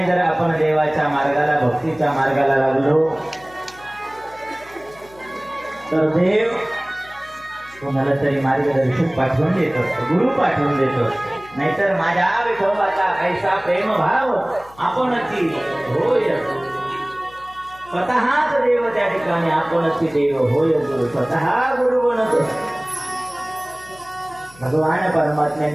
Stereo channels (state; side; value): noise; left; hum, 24 dB below the sound